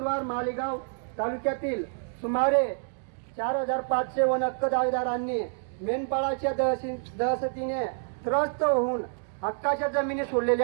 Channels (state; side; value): silent; left; digital silence